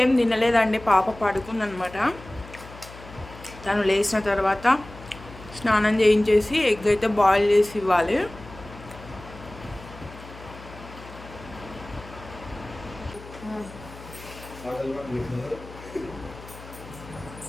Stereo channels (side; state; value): left; noise; hum, 17 dB below the sound